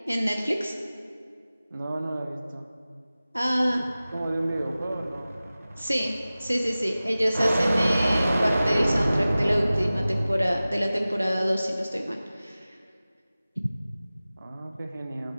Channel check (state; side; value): inverted; both; correlation -0.97